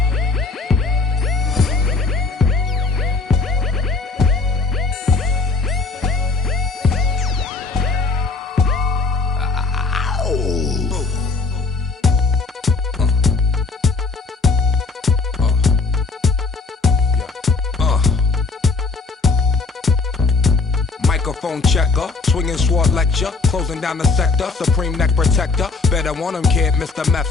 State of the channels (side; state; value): right; quieter; 4.0 dB